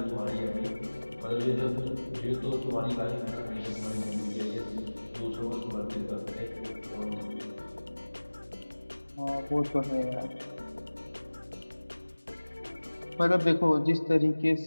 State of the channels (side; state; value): both; inverted; correlation -1.00